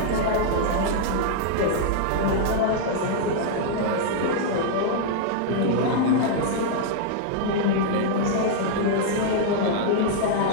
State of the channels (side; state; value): both; different; correlation -0.01